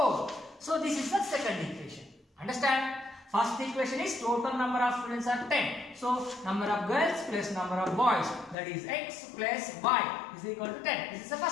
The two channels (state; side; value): drops out; right; at 8.6 s